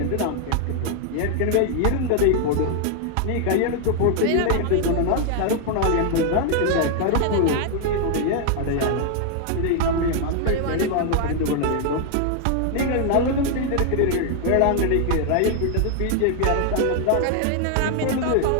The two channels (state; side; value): different; both; correlation 0.00